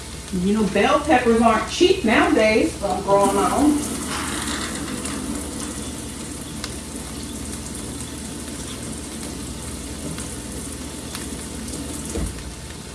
You know, bell peppers aren't cheap nowadays, so I'm growing my own.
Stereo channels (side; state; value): both; identical; correlation 1.00